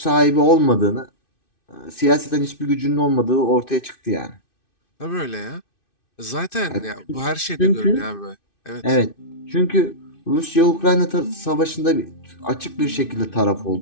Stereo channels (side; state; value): right; late; 2.6 ms